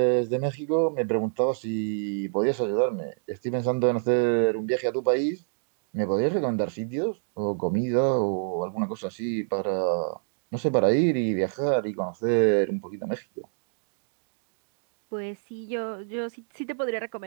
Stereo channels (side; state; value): left; silent; digital silence